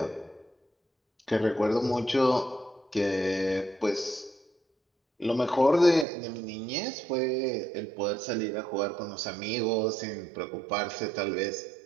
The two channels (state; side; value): drops out; left; at 6.1 s